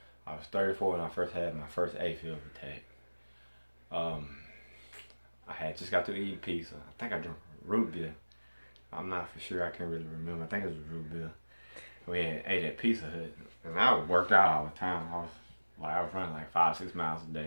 I was 34 when I first had my first AFib attack. I had just got through eating pizza. I think I drank root beer. I'm not for sure. I can't really remember. I think it was root beer. We had ate at Pizza Hut, and I worked out all the time. I was running like 5-6 miles a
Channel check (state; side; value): inverted; both; correlation -1.00